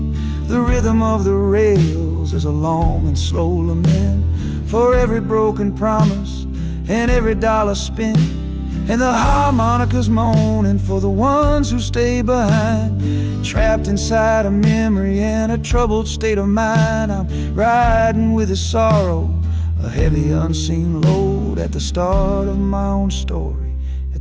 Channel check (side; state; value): both; identical; correlation 1.00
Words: The rhythm of the rails is a long and slow lament for every broken promise and every dollar spent, and the harmonica's moaning for the ones who stay behind, trapped inside a memory and a troubled state of mind. I'm riding with a sorrow, a heavy unseen load, at the start of my own story,